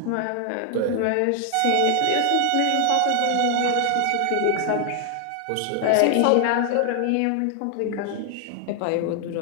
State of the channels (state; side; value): different; both; correlation 0.00